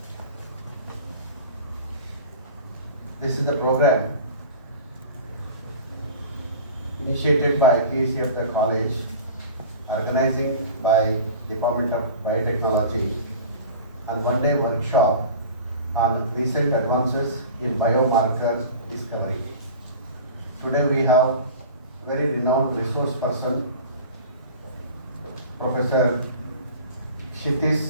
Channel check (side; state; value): both; inverted; correlation -0.38